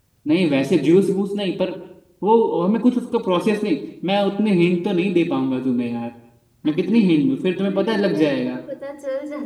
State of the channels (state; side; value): identical; both; correlation 1.00